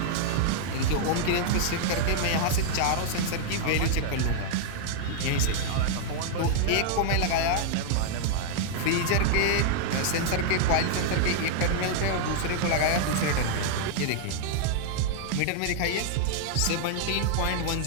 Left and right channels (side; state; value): both; different; correlation -0.01